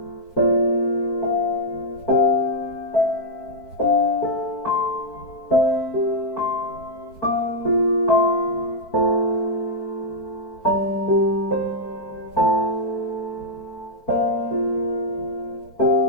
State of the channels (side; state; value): right; late; 4.6 ms